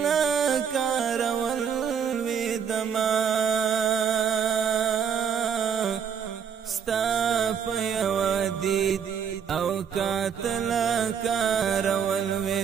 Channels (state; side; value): quieter; left; 7.6 dB